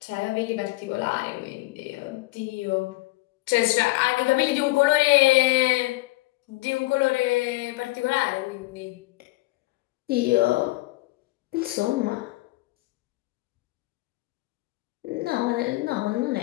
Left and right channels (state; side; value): quieter; right; 21.0 dB